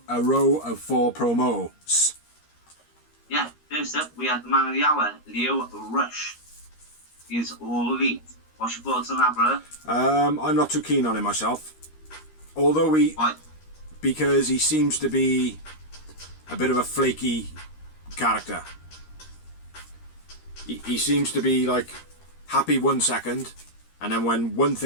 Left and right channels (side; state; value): right; late; 13 ms